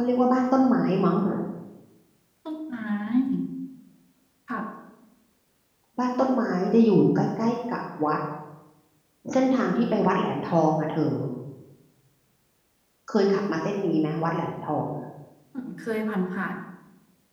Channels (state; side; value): identical; both; correlation 1.00